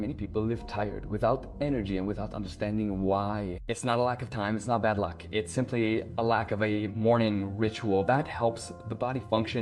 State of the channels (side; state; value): both; identical; correlation 1.00